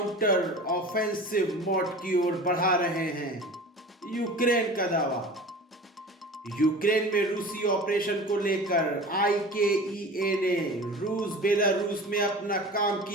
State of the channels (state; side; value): normal; both; correlation 0.37